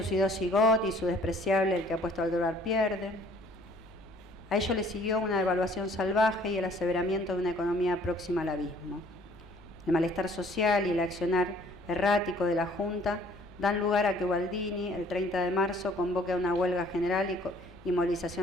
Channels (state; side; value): normal; both; correlation 0.57